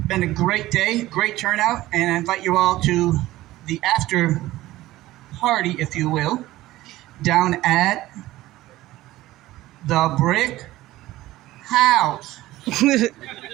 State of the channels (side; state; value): left; quieter; 16.5 dB